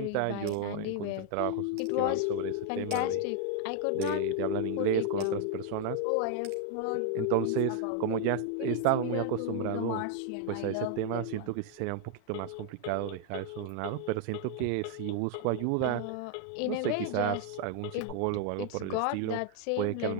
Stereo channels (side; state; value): both; different; correlation 0.00